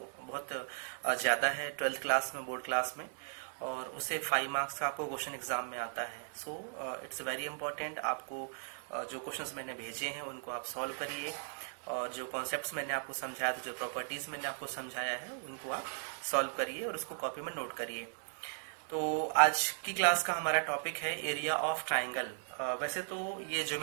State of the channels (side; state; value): left; silent; 53 dB below the other